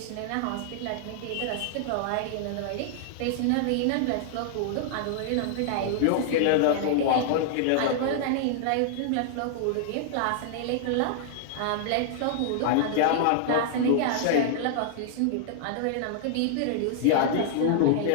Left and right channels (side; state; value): both; different; correlation -0.01